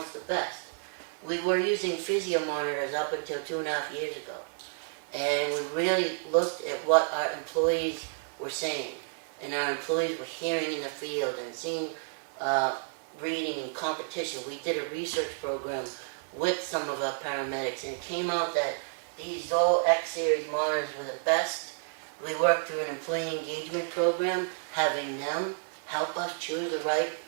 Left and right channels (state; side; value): silent; left; 57 dB below the other